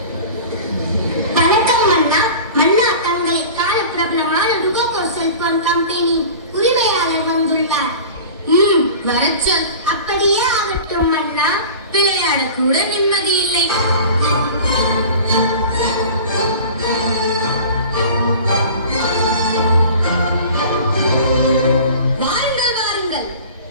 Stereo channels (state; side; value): inverted; both; correlation -0.39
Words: கூட நிம்மதி இல்லை. வாருங்கள் வாருங்கள்.